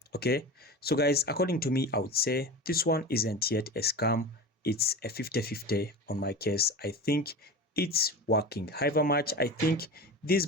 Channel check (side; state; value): both; normal; correlation 0.30